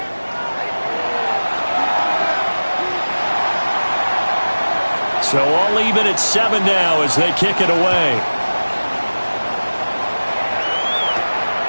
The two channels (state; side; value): inverted; both; correlation -1.00